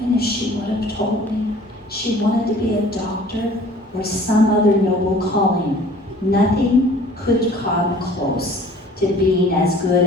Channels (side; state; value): both; normal; correlation 0.50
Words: if she would have told me she wanted to be a doctor or some other noble calling, nothing could come close to being as